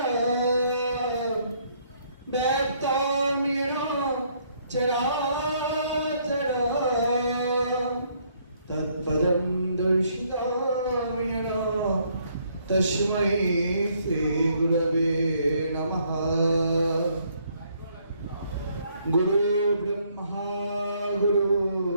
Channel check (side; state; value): both; inverted; correlation -0.68